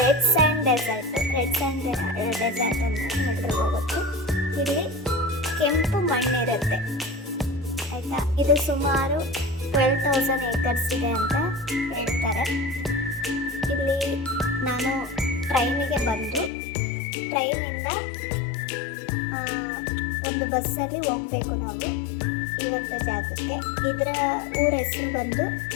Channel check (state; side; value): drops out; right; at 16.5 s